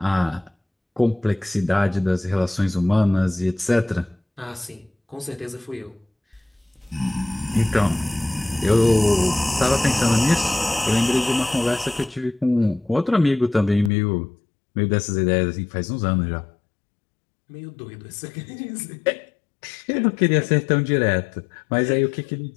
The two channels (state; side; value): drops out; right; at 13.9 s